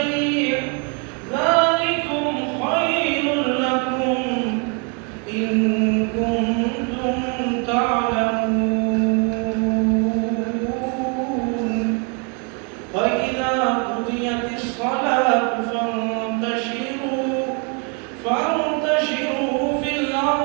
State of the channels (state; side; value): quieter; left; 36.1 dB